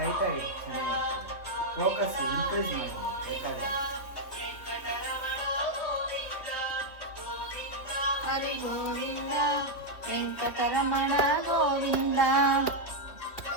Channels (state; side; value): late; right; 3.3 ms